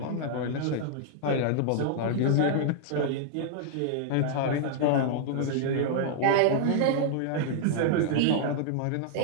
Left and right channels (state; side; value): different; both; correlation -0.01